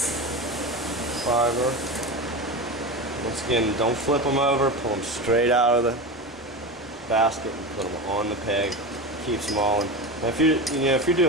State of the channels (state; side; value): normal; both; correlation 0.24